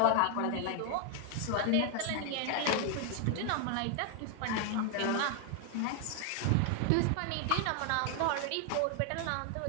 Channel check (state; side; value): different; both; correlation 0.00